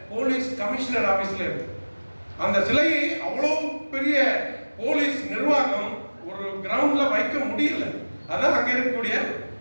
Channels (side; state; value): both; inverted; correlation -1.00